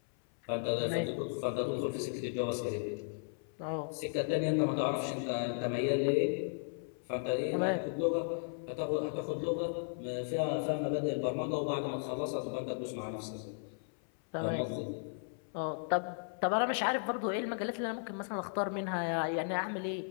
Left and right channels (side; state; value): right; silent; 54 dB below the other